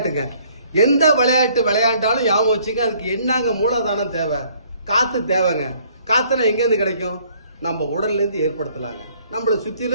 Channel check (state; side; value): inverted; both; correlation -0.61